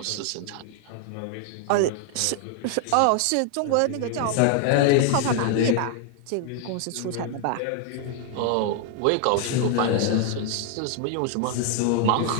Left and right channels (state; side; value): different; both; correlation 0.00